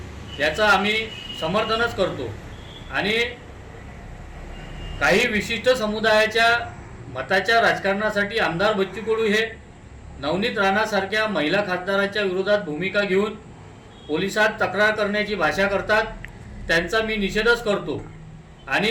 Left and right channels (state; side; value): identical; both; correlation 1.00